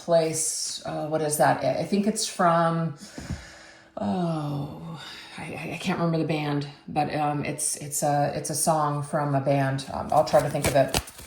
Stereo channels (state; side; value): identical; both; correlation 1.00